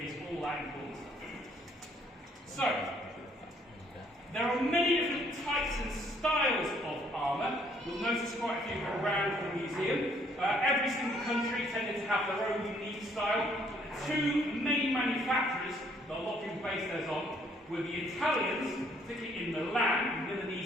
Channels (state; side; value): normal; both; correlation 0.65